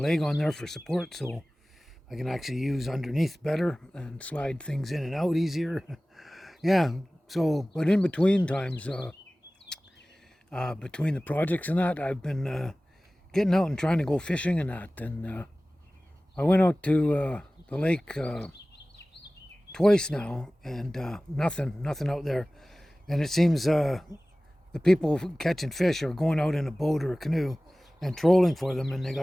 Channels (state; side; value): normal; both; correlation 0.98